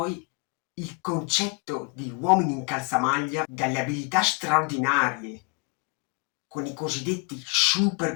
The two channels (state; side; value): quieter; right; 33.3 dB